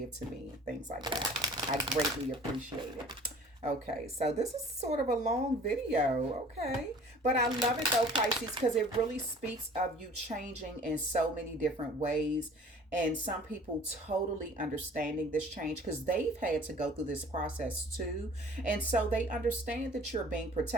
to me and things like that. I greatly appreciate it. Okay, so this is sort of a long video, okay? But I love it though, Pisces, because it really speaks of you changing in so many different ways. And some people totally understanding this change because they've had to go through this process too. And so they understand that you're being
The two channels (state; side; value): normal; both; correlation 0.49